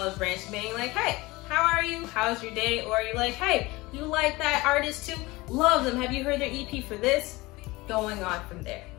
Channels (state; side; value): quieter; right; 21.5 dB